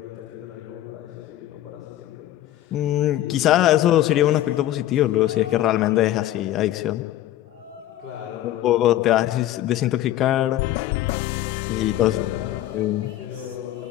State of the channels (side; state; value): right; quieter; 13.5 dB